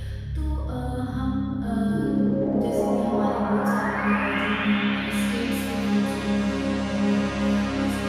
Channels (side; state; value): both; identical; correlation 1.00